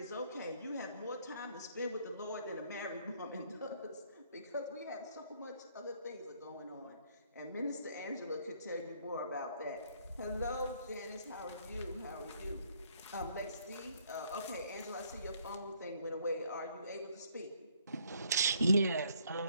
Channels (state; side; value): inverted; both; correlation -0.66